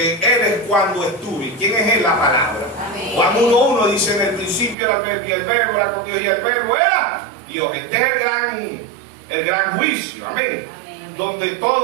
Él es cuando estuve. ¿Quién es Él? La palabra. Amén. Juan 1:1 dice, en el principio era el verbo y el verbo era con Dios y el verbo era Dios. Este es el gran juicio. Amén. Amén. Donde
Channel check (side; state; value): left; drops out; at 4.8 s